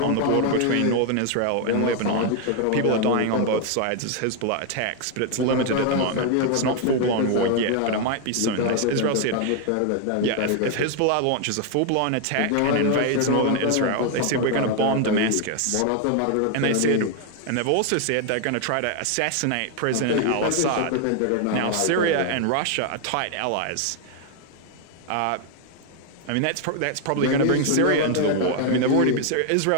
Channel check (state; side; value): different; both; correlation 0.00